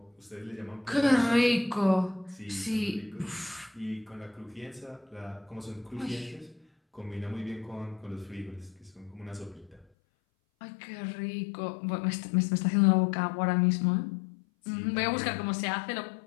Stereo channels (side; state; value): right; drops out; at 9.9 s